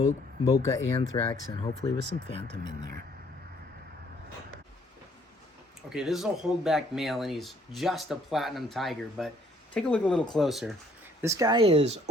Anthrax, and hopefully with some Phantom in there. Okay, this is a holdback male, and he's just a platinum tiger, but take a look a little closer. This guy is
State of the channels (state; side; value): normal; both; correlation 0.63